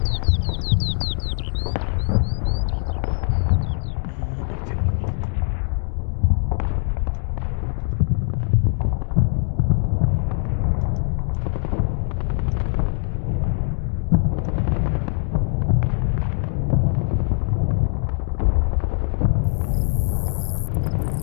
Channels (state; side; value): silent; right; 55 dB below the other